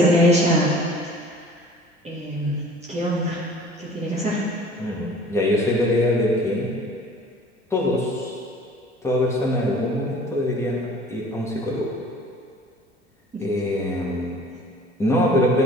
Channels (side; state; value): both; normal; correlation 0.48